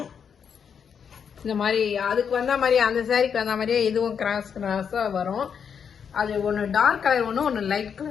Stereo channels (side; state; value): right; quieter; 7.1 dB